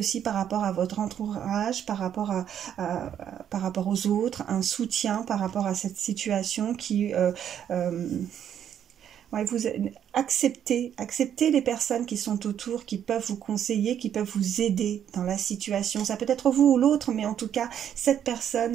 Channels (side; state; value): left; quieter; 9.5 dB